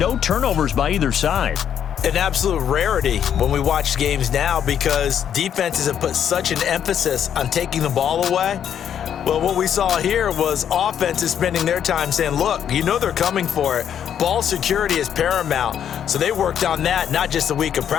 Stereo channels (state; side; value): quieter; right; 9.1 dB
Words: turnovers by either side. An absolute rarity when we watch games now because defenses have put such an emphasis on taking the ball away. Well, what we saw here was offenses spending their time saying, look, you know they're coming for it. Ball security is paramount. So they worked on that, not just a week of